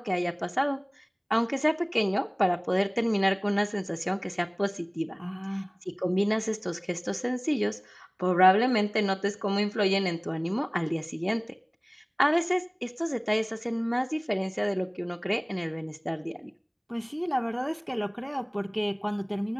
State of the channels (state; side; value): identical; both; correlation 1.00